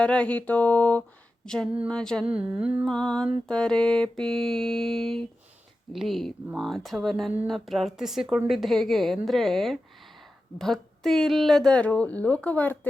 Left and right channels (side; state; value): both; normal; correlation 0.93